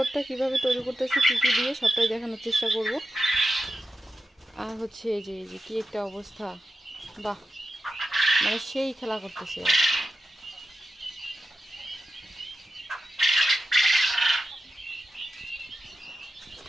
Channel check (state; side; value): normal; both; correlation 0.90